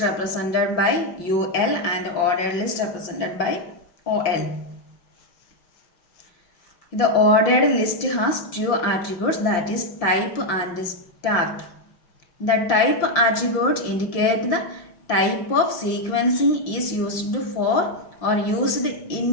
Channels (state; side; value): late; right; 5.8 ms